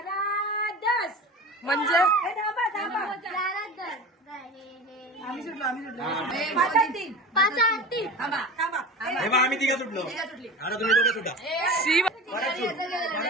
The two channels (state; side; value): normal; both; correlation 0.33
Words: म्हणजे आम्ही सुटलो. 5-3. आम्ही तिघा सुटलो. आता तुम्ही दोघे सुटा.